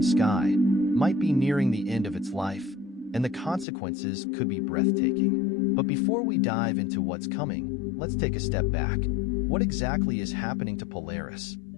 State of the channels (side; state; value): right; drops out; at 3.7 s